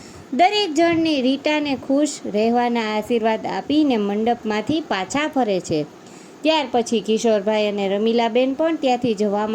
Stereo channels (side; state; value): both; identical; correlation 1.00